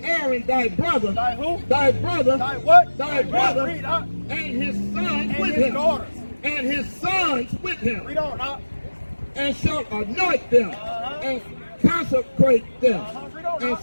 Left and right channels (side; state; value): both; inverted; correlation -1.00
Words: Aaron thy brother. Thy who? Thy brother. Thy what? Thy brother. Read up. And his sons And with his him. daughters. And his sons with him. Read on up. And shalt anoint them. And consecrate them. Read on And up.